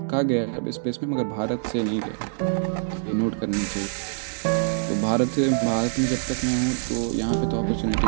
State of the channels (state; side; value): silent; left; digital silence